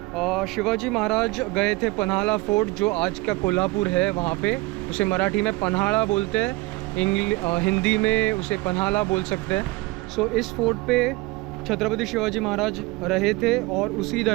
शिवाजी महाराज गए थे पन्हाड़ा फोर्ट, जो आज का कोल्हापुर है, वहाँ पे उसे मराठी में पन्हाड़ा बोलते हैं, हिंदी में उसे पन्हाड़ा बोल सकते हैं। सो इस फोर्ट पे छत्रपति शिवाजी महाराज रहे थे, और उसी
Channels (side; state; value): left; quieter; 22.2 dB